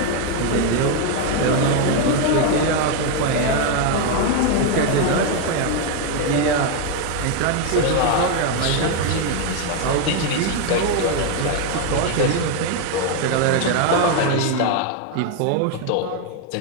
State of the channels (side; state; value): both; different; correlation 0.01